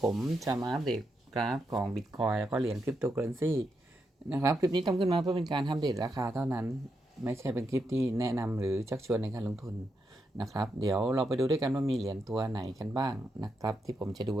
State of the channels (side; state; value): both; normal; correlation 0.83